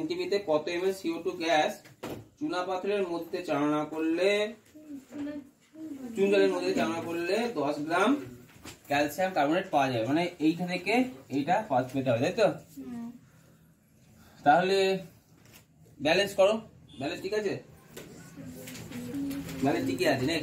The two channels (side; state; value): both; identical; correlation 1.00